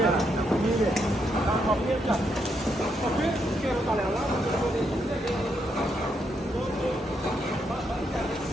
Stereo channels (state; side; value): normal; both; correlation 0.78